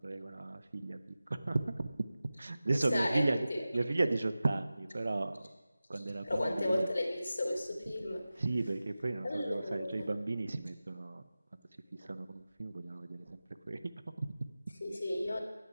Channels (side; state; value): both; inverted; correlation -0.95